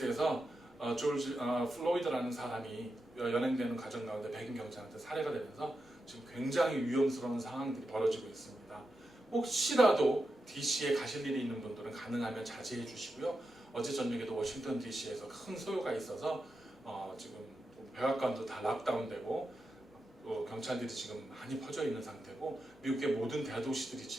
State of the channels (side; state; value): both; normal; correlation 0.88